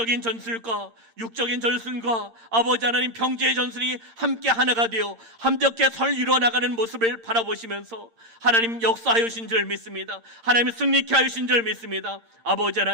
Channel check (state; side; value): late; left; 8.8 ms